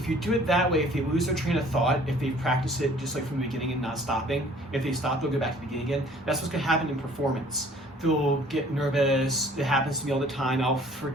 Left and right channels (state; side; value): normal; both; correlation 0.54